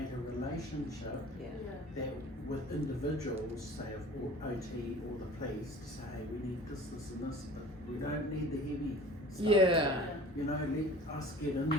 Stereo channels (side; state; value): both; normal; correlation 0.44